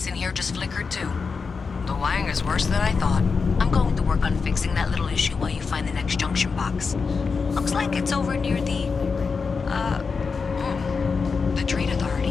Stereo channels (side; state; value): right; quieter; 5.0 dB